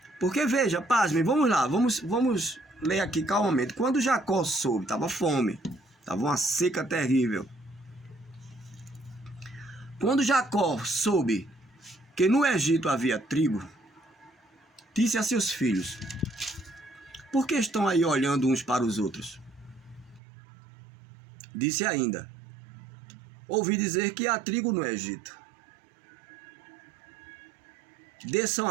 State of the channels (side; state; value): left; drops out; at 20.2 s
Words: Porque veja, pasmem, vamos lá, vamos ler aqui calmamente. Quando Jacó soube, estava fome, estava uma seca terrível. Quando Jacó soube que no Egito havia trigo, disse a seus filhos: por que estão aí olhando uns para os outros? Disse ainda: ouvi dizer que há trigo no Egito. Desçam